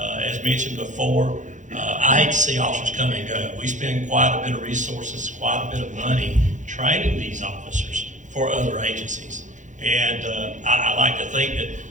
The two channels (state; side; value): late; left; 0.36 ms